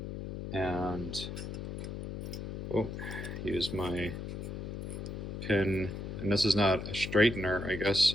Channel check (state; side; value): noise; left; hum, 6 dB below the sound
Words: and use my pin. And this is not a straightener, I guess.